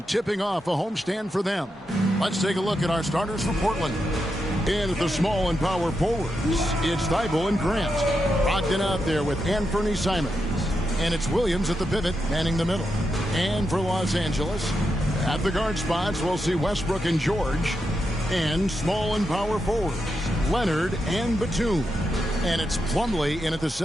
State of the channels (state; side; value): normal; both; correlation 0.85